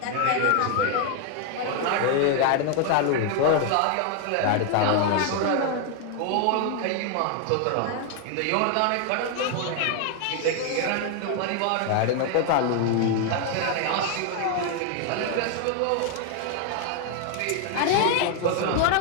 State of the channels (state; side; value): different; both; correlation 0.00